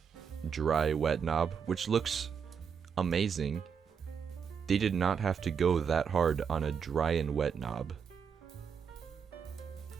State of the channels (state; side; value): quieter; left; 6.8 dB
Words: dry wet knob, which looks amazing, They did not have to go that hard on a dry and wet knob.